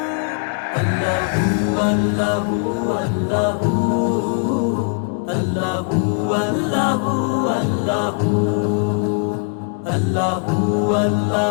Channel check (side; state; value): right; quieter; 34.8 dB